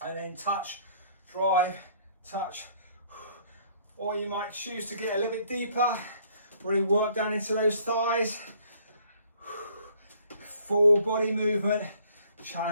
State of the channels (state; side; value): inverted; both; correlation -0.60